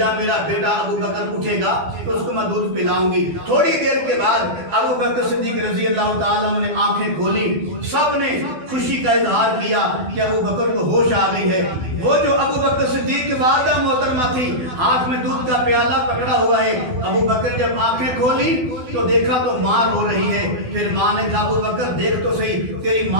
میرا بیٹا ابو بکر اٹھے گا تو اس کو میں دودھ پلاؤں گی. تھوڑی دیر کے بعد ابو بکر صدیق رضی اللہ تعالیٰ عنہ نے آنکھیں کھولی. سب نے خوشی کا اظہار کیا کہ ابو بکر کو ہوش آ گئی ہے. وہ جو ابو بکر صدیق کی والدہ محترمہ تھی, ہاتھ میں دودھ کا پیالہ پکڑا ہوا ہے. ابو بکر جب آنکھیں کھولی تو دیکھا تو ماں رو رہی ہے. پھر ماں نے کہا ابو بکر دیکھ تو صحیح, تیری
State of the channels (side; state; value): left; late; 12 ms